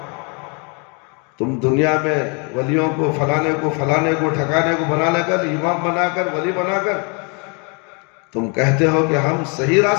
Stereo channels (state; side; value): quieter; right; 34.8 dB